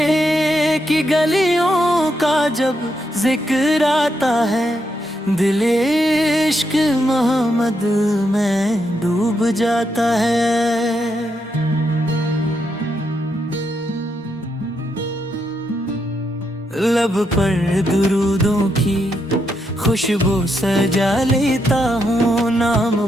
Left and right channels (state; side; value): normal; both; correlation 0.80